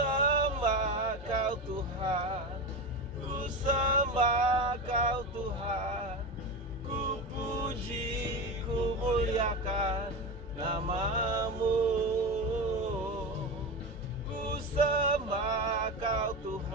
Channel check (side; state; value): both; normal; correlation 0.22